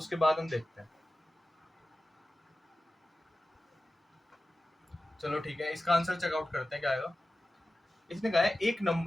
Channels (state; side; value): normal; both; correlation 0.95